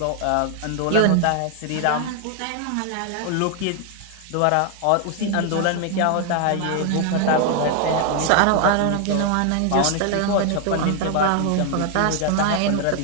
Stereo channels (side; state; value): both; different; correlation 0.00